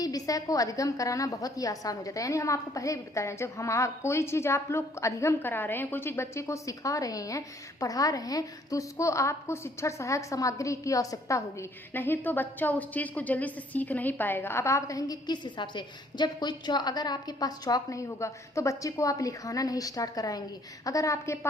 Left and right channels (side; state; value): both; normal; correlation 0.62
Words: विषय को अधिगम कराना बहुत ही आसान हो जाता है। यानी हम आपको पहले भी बताया, जब हम कोई चीज आप लोग अधिगम करा रहे हैं, कोई चीज बच्चे को सिखा रहे हैं, पढ़ा रहे हैं, तो उसको आपको शिक्षण सहायक सामग्री की आवश्यकता होगी, नहीं तो बच्चा उस चीज को जल्दी से सीख नहीं पाएगा। अब आप कहेंगे किस हिसाब से, जब अगर आपके पास चौक नहीं होगा तो बच्चे को आप लिखाना नहीं स्टार्ट कराएंगे, अगर आपके